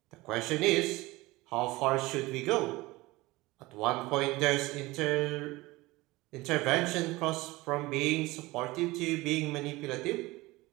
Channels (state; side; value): quieter; left; 20.6 dB